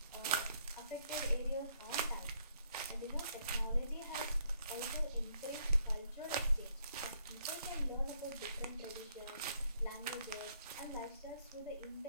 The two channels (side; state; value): both; inverted; correlation -0.69